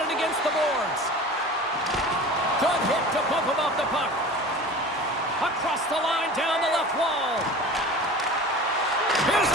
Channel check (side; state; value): both; normal; correlation 0.38